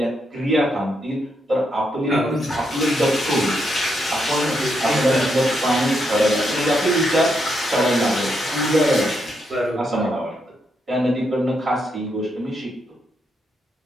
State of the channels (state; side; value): normal; both; correlation 0.80